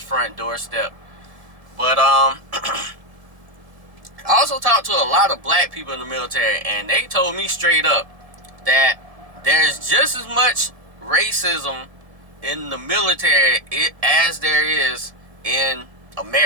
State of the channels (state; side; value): late; left; 1.7 ms